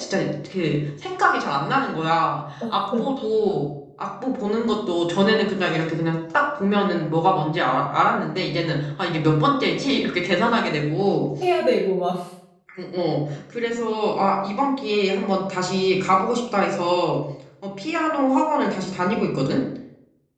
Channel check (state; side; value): identical; both; correlation 1.00